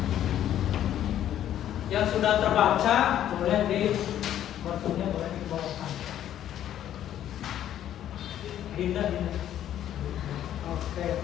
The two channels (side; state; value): right; quieter; 11.3 dB